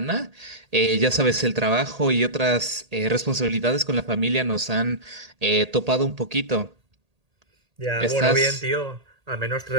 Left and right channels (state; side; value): late; left; 1.8 ms